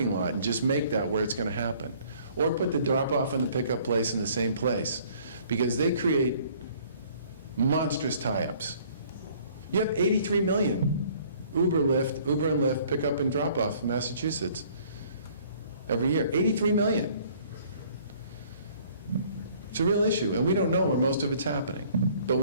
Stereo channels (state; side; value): inverted; both; correlation -0.57